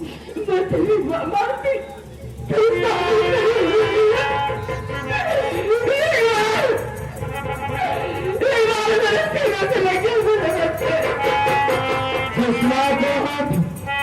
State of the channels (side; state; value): both; identical; correlation 1.00